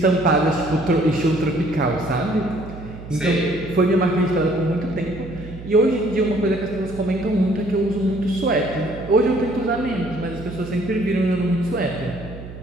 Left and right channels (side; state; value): right; noise; hum, 13 dB below the sound